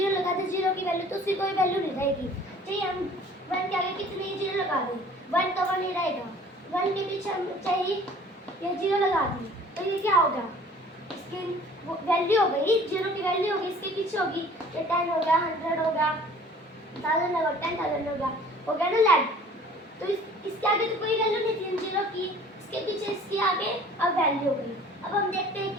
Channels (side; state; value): both; normal; correlation 0.49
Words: लगा दे, जीरो की वैल्यू, तो उसकी कोई वैल्यू नहीं रहेगी। चाहिए हम 1 के आगे कितनी जीरो लगा दें, 1 तो 1 ही रहेगा। 1 के पीछे हम चाहिए ये जीरो लगा दी, तो ये क्या होगा, इसकी वैल्यू हो गई, जीरो की वैल्यू होगी, इसके पीछे होगी, ये 10 होगा, 100 होगा, 1000 होगा, 10,000 होगा, हो गया ना लाख। तो इसके आगे तो कोई वैल्यू नहीं थी जीरो की, इसके पीछे इसके आगे अब वैल्यू हो गई। अब हम देखते हैं